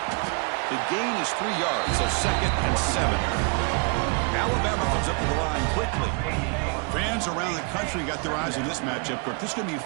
The gain is 3 yards, so 2nd and 7. Alabama comes up to the line quickly. Fans around the country got their eyes on this matchup, Kirk. This is going to be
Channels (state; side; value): quieter; left; 34.7 dB